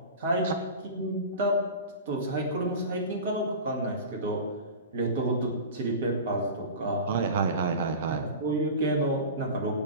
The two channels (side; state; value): both; inverted; correlation -0.32